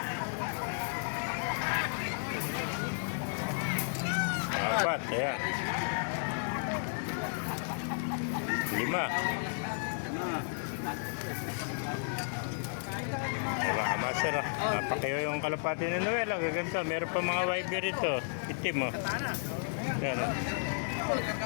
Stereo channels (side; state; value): right; silent; digital silence